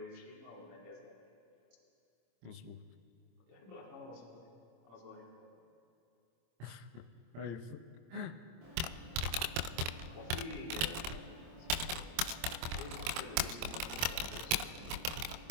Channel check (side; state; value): left; late; 26 ms